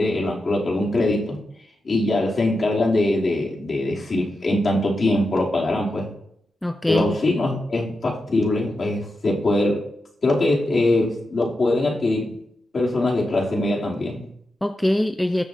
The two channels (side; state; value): both; normal; correlation 0.89